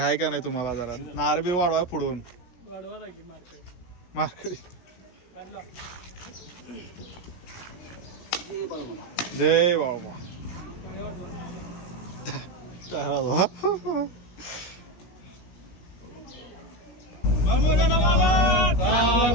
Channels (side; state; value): right; late; 17 ms